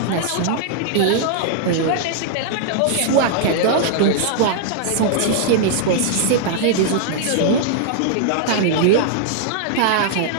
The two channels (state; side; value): different; both; correlation -0.01